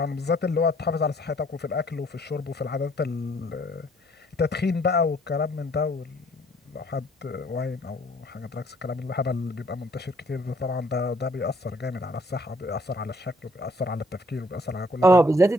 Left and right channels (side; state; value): both; normal; correlation 0.62